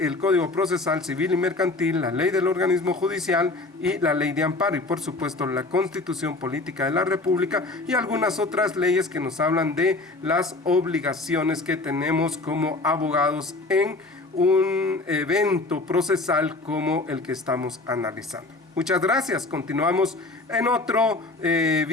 el Código Procesal Civil y Mercantil, la ley del organismo judicial y la ley de amparo, y por supuesto la Constitución Política de la República y algunas otras leyes que nos hablan de las obligaciones que tenemos como abogados en un evento procesal como el que estamos analizando. Muchas gracias. Continuamos en otro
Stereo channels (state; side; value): quieter; right; 3.2 dB